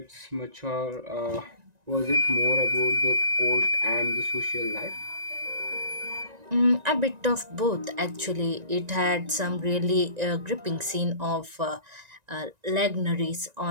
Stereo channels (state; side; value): late; left; 1.9 ms